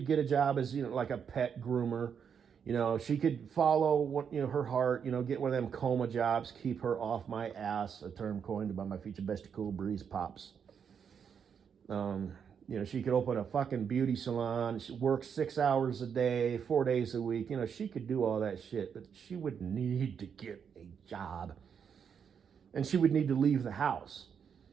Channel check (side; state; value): left; quieter; 7.2 dB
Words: get a job as like a pet groomer. She could follow what her heart. Get one of them coma jobs, keep her off my ass. A term coined by my future bestie, Cool Breeze Pops. She could open a fucking beauty salon. She works 6 hours a day, 4 days a week. She could do all that shit, but she would need to get a job, and she would need to leave the house.